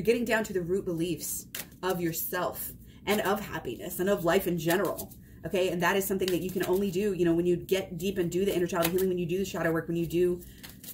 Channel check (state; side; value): identical; both; correlation 1.00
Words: getting down to the root beliefs of yourself and of happiness and of life in general. Okay. And that is something that you can only do, you know, when you get deep and do the inner child healing, when you do the shadow work, when you do,